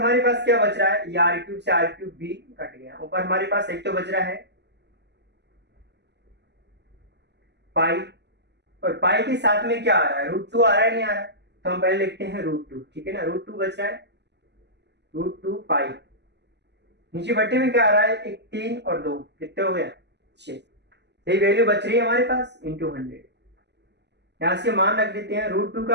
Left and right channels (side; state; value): left; late; 0.50 ms